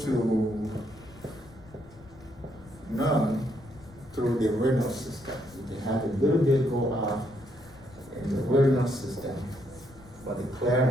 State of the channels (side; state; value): left; noise; rumble, 22 dB below the sound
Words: none through the renal system. You can have a little bit go out in the renal system, but the